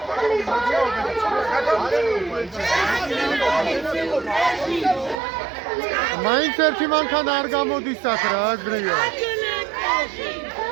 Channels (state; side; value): drops out; left; at 5.2 s